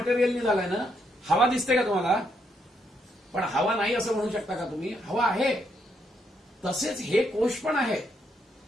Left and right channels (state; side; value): normal; both; correlation 0.76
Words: झालंय ना, हवा दिसते का तुम्हाला? पण हवा नाही असं म्हणू शकता का तुम्ही? हवा आहे. तसेच हे कोश पण आहे,